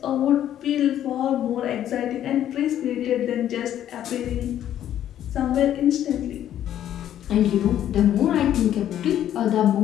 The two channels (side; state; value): right; quieter; 11.2 dB